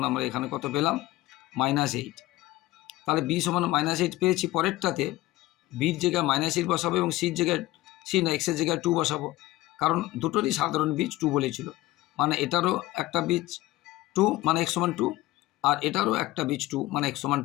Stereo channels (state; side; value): quieter; right; 17.8 dB